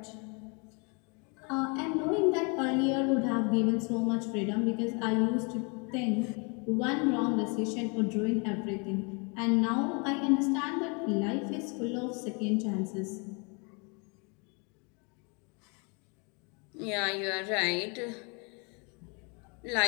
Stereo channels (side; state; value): right; quieter; 33.4 dB